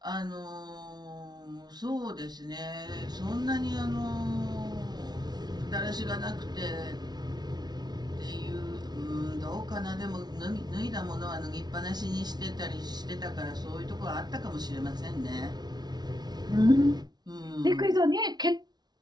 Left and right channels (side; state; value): left; late; 0.19 ms